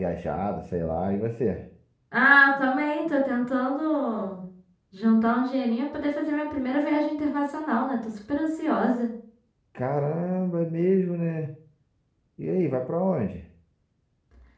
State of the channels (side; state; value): both; identical; correlation 1.00